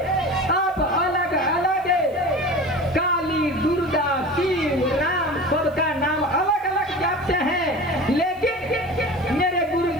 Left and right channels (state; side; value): noise; right; hiss, 29 dB below the sound